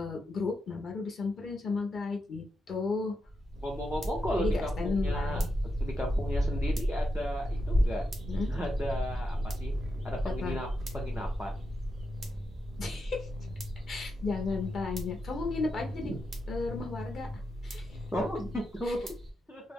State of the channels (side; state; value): both; normal; correlation 0.86